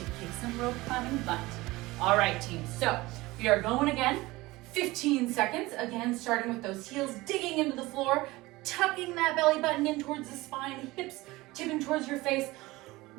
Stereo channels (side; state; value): left; quieter; 20.2 dB